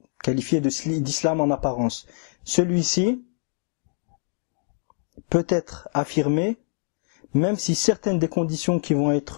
qualifier d'islam en apparence, celui-ci peut être affirmé même si certaines des conditions qui vont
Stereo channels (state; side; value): silent; right; digital silence